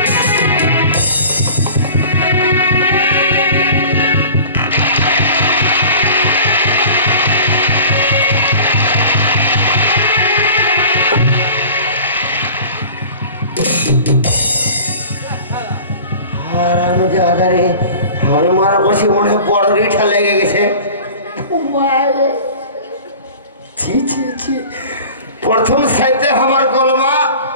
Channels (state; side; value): inverted; both; correlation -0.42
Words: আমি মারা বসে মনে হয় বড় রিঠা লেগে গেছে প্রথম সাইতে আমার কলমা